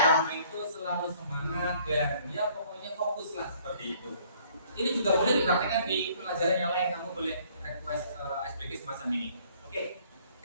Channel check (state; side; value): inverted; both; correlation -0.60